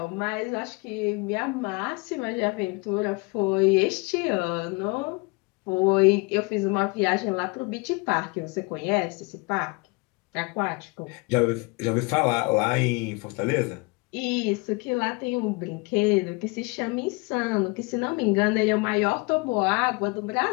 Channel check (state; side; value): quieter; right; 28.2 dB